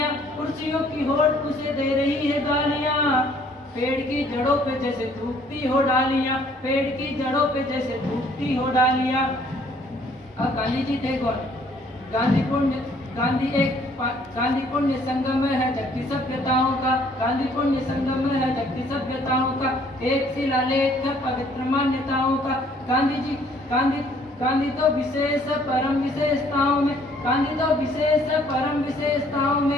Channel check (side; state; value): both; normal; correlation 0.61